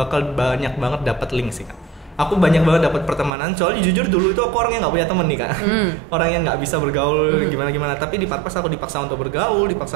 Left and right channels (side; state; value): left; drops out; at 3.3 s